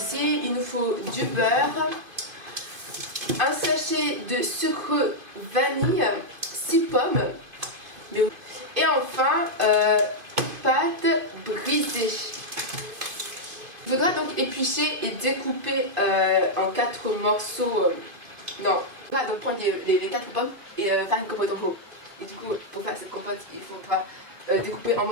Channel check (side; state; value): left; late; 2.5 ms